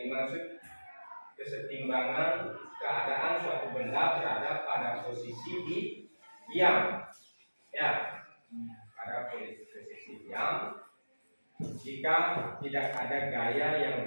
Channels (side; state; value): both; inverted; correlation -1.00